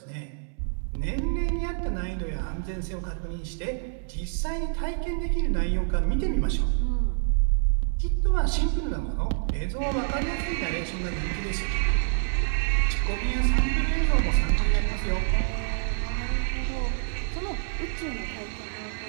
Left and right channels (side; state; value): left; silent; 60 dB below the other